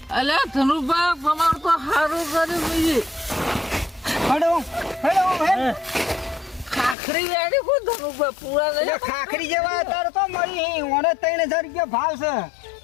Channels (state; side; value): drops out; right; at 7.0 s